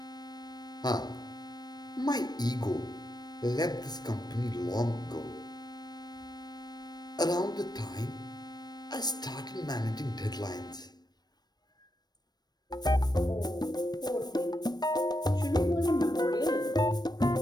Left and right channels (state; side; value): late; right; 0.19 ms